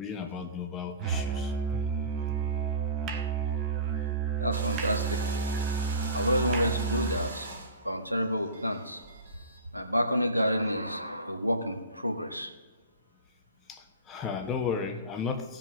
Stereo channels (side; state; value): both; inverted; correlation -0.36